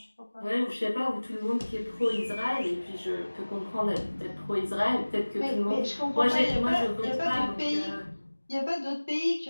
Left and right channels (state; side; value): inverted; both; correlation -1.00